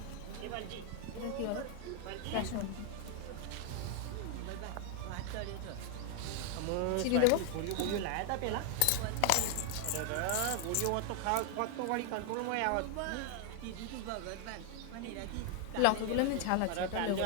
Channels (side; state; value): both; different; correlation 0.00